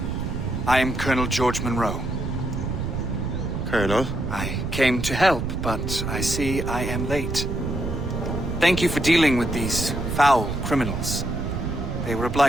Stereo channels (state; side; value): noise; right; rumble, 4 dB below the sound